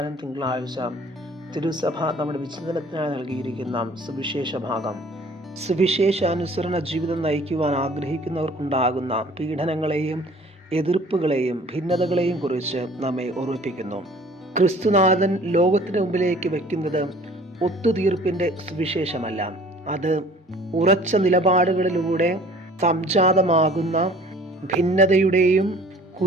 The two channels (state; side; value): normal; both; correlation 0.51